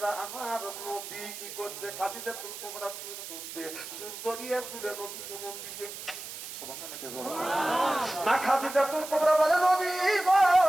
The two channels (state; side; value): noise; right; hiss, 10 dB below the sound